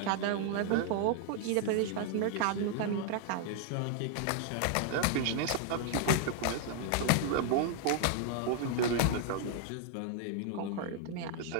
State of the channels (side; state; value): both; different; correlation 0.00